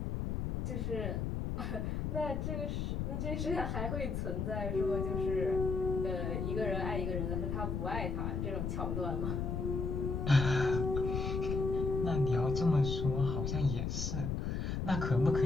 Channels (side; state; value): left; noise; rumble, 1 dB below the sound